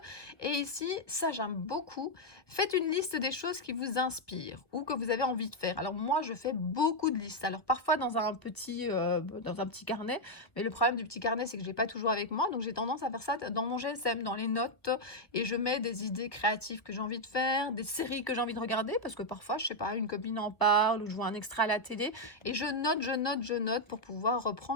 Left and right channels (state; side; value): late; right; 1.5 ms